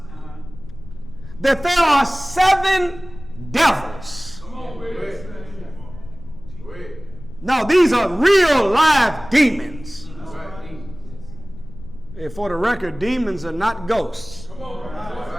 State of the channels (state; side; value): noise; left; rumble, 16 dB below the sound